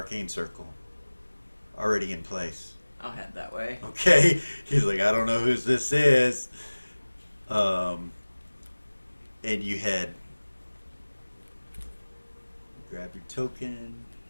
circle, already in place. I'll head that way. Okay, he's like, I don't know whose this is. And you head, grab your token.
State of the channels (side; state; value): both; inverted; correlation -1.00